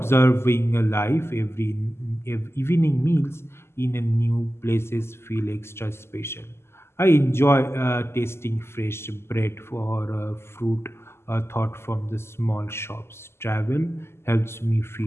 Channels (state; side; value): late; right; 0.12 ms